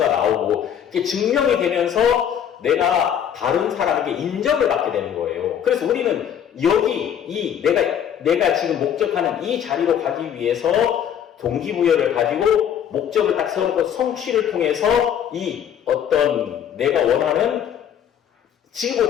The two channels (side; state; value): right; quieter; 9.1 dB